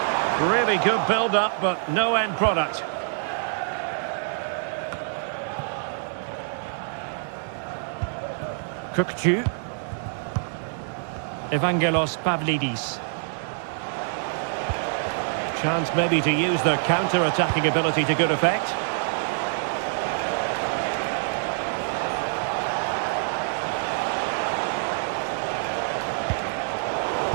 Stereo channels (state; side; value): silent; left; digital silence